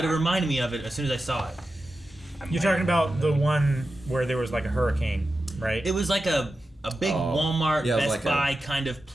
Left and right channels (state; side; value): normal; both; correlation 0.92